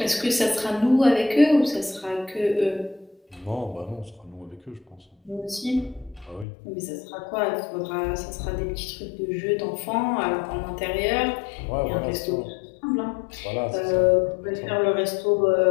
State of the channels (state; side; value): drops out; right; at 6.5 s